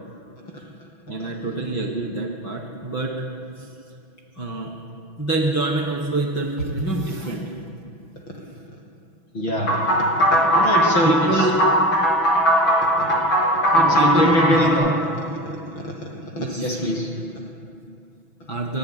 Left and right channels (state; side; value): late; right; 6.1 ms